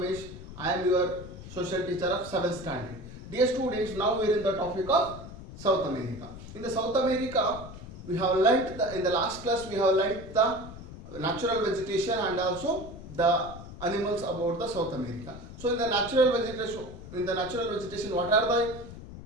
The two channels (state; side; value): noise; left; rumble, 13 dB below the sound